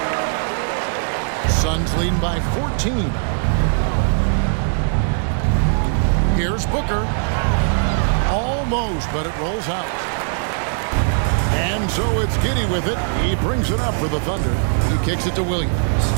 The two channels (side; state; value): left; silent; digital silence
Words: Suns leading by 14. Here's Booker. Almost, but it rolls out. And so it's Giddey with it. He brings it up for the Thunder. He kicks it to Williams.